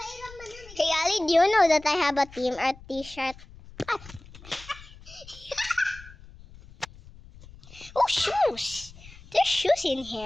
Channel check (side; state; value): left; noise; rumble, 20 dB below the sound